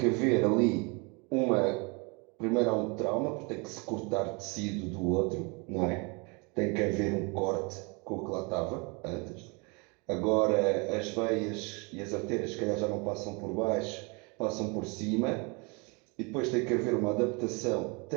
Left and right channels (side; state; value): left; quieter; 30.4 dB